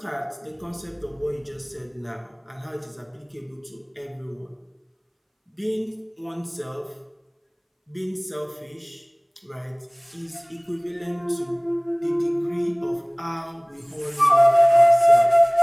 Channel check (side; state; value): both; identical; correlation 1.00